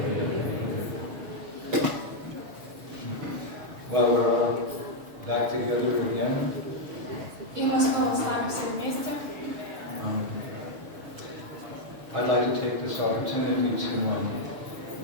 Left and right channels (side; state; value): left; late; 6.6 ms